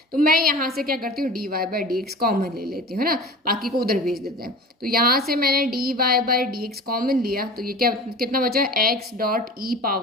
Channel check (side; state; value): both; normal; correlation 0.37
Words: तो मैं यहाँ से क्या करती हूँ, d y by d x common ले लेती हूँ, है ना, बाकी को उधर भेज देते हैं। तो यहाँ से मैंने d y by d x common लिया, तो ये क्या कितना बचा, x dot e